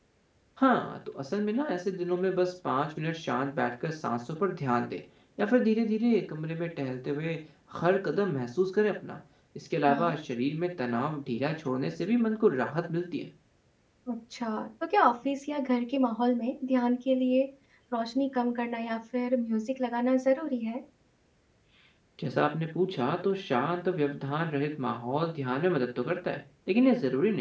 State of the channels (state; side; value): identical; both; correlation 1.00